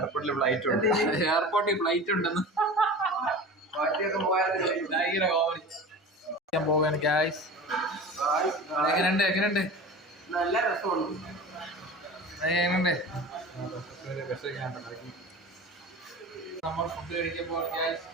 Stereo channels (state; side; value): normal; both; correlation 0.35